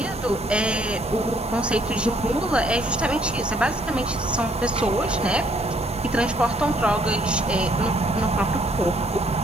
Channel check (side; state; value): both; normal; correlation 0.65